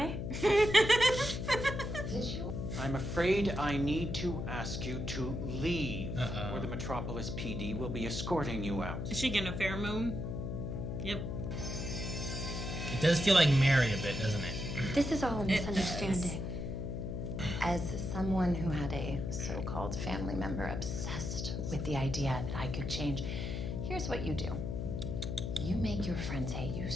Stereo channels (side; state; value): left; noise; hum, 4 dB below the sound